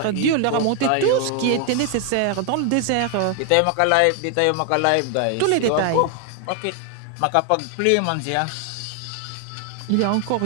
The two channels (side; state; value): both; different; correlation 0.00